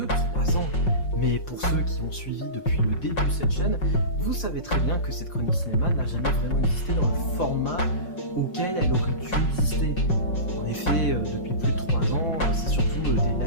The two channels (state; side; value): late; right; 5.4 ms